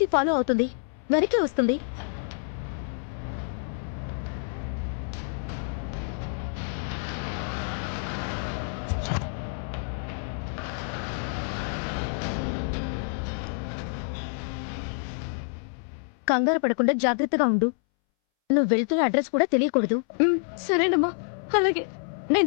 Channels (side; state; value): right; silent; 60 dB below the other